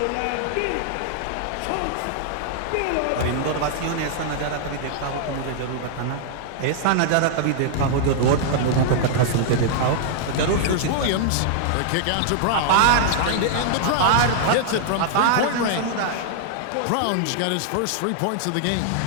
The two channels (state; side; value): different; both; correlation -0.01